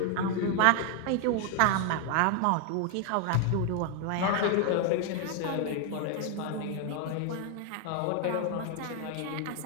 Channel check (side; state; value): both; different; correlation 0.00